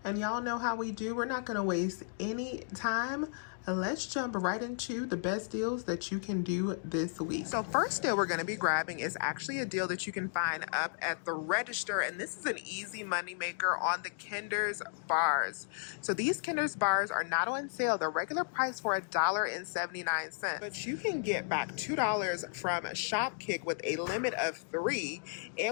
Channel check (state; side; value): silent; right; digital silence